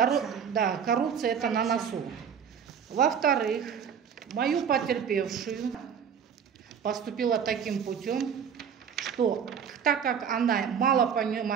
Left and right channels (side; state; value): left; quieter; 7.6 dB